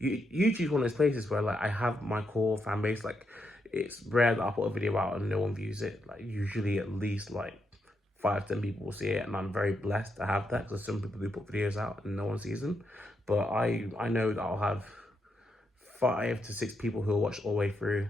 one of those places where like, I have my core fan base. Like, it's rare that I put a video out and no one views it. Like, usually at least like 5-10 people will see it, and I'm very blessed to have that, because some people do put videos out and no one sees them. But I know that I'll have 5 to 6 people who will watch all the way through,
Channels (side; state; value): both; normal; correlation 0.81